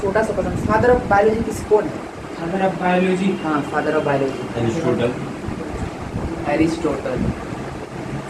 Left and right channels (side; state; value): both; identical; correlation 1.00